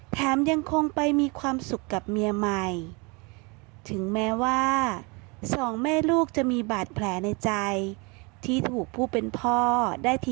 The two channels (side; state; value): left; quieter; 29.3 dB